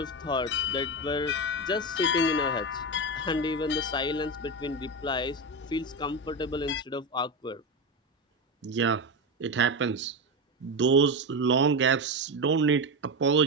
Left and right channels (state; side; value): normal; both; correlation 0.16